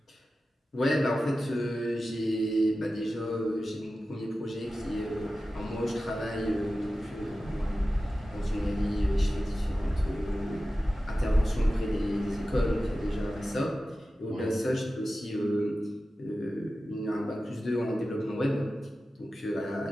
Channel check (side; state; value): both; normal; correlation 0.94